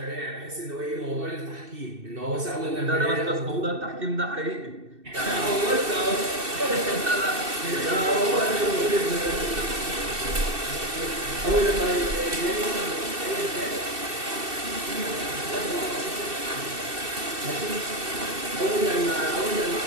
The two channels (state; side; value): late; left; 2.7 ms